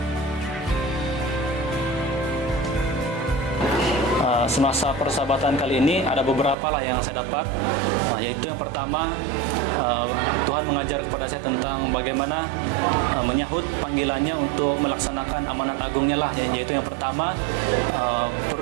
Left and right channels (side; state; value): left; drops out; at 6.6 s